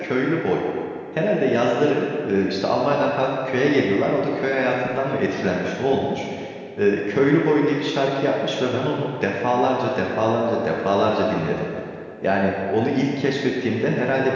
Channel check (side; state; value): both; identical; correlation 1.00